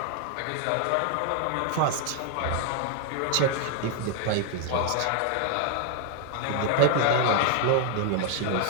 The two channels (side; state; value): both; different; correlation 0.00